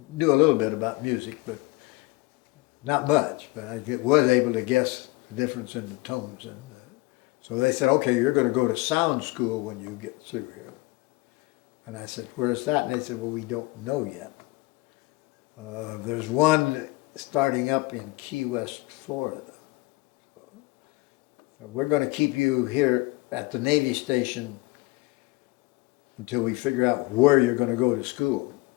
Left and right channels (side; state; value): right; quieter; 22.3 dB